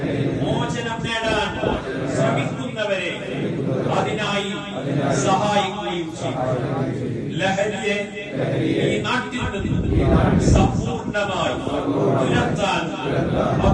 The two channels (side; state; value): both; identical; correlation 1.00